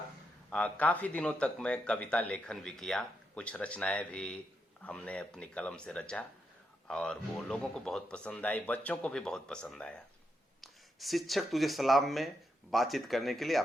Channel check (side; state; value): both; normal; correlation 0.82